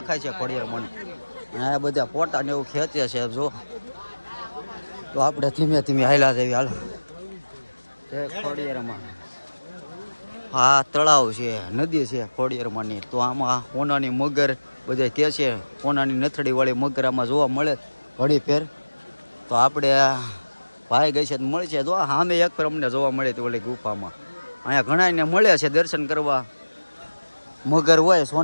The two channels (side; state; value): both; inverted; correlation -1.00